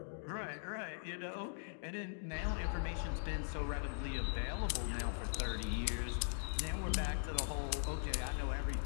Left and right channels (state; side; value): silent; right; digital silence